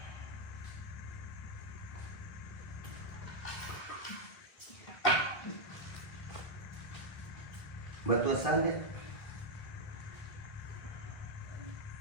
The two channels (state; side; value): late; right; 2.0 ms